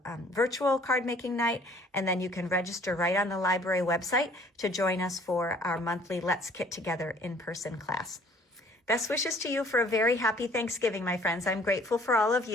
virtual card making night, and then you can register right on the library website to join us for our monthly Let's Kit Together in-person class. Best wishes to you for a very happy Thanksgiving, my friends. I'm grateful for all of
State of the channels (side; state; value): both; normal; correlation 0.56